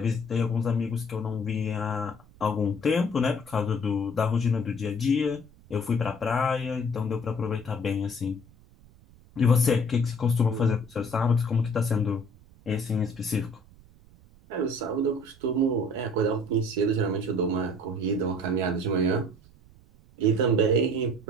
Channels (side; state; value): right; noise; rumble, 25 dB below the sound